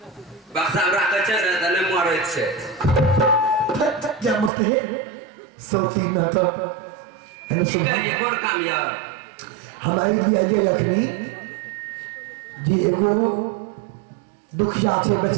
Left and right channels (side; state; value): left; drops out; at 4.5 s